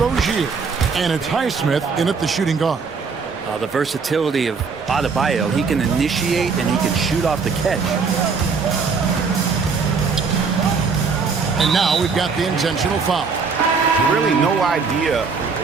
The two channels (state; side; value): quieter; left; 5.1 dB